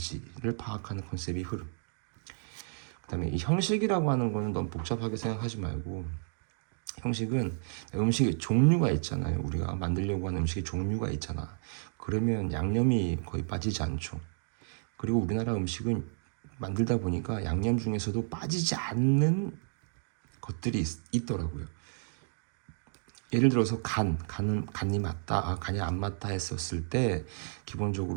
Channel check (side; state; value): left; silent; digital silence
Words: 파악하는 컨셉이 흐름. 그 다음에 이 형식이라고 하는 거는 너무 복잡하게 생각하지 말고, 형식은 음식의 종류가 있잖아요. 우리가 만들려고 하는 음식의 종류가 있잖아. 그러면 양념이 거의 빠지지 않죠. 그리고 우리나라 음식은 만들다 보니까 양념 중에서도 빠지지 않는 것들이 있더라고요. 예를 들어서 간이 맞다, 간이 안 맞다 했었을 때